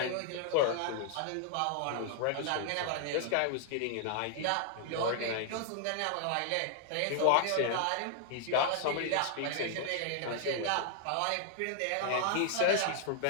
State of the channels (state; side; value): different; both; correlation 0.00